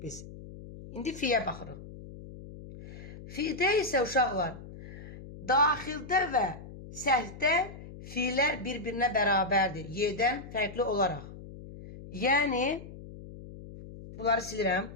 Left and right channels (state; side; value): noise; left; hum, 14 dB below the sound